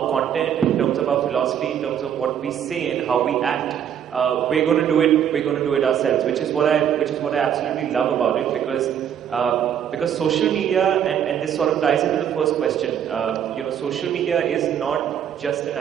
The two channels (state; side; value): quieter; left; 9.2 dB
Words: content, in terms of our philosophy, in terms of what we say and how we act, we're going to do it. We're going to do it ourselves, which is what I absolutely love about it, because social media, and this sort of ties into the first question. Social media is not just an